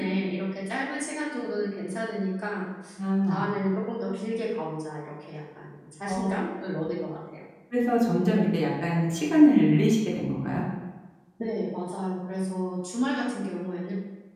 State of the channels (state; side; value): identical; both; correlation 1.00